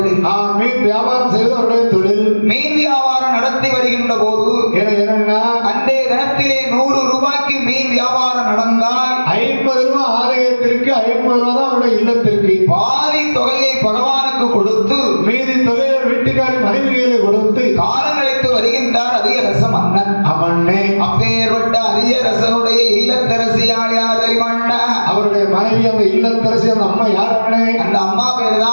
மீன் வியாபாரம் செய்வது அவருடைய தொழில். மீன் வியாபாரம் நடத்தி வருகின்ற போது என்னன்னா அன்றைய தினத்திலே 100 ரூபாய்க்கு மீன் வியாபாரம் நடந்தால் 50 ரூபாய் ஆலயத்திற்கு 50 ரூபாய் தான் அவருடைய இல்லத்திற்கு. பாதி தொகையை பகவானுக்கு கொடுத்து மீதி தொகையை வீட்டுக்காரி மனைவிகளை கொடுத்து காலம் கழித்து வருகின்றார் அதிகரச மன்னன். அவனே அப்பேற்பட்ட அதிகரசனுடைய இல்லத்தரசியால் யாரை மன்னா? அவருடைய மனைவி அந்த இல்லத்தரசி அந்த அம்மா யார் அண்ணே? அந்த அம்மா பேர்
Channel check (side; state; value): both; inverted; correlation -1.00